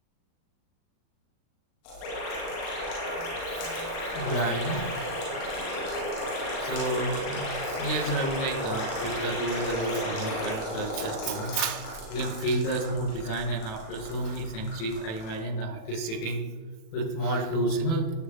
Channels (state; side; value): late; right; 36 ms